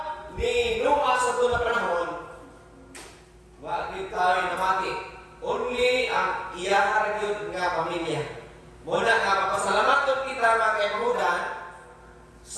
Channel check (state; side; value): identical; both; correlation 1.00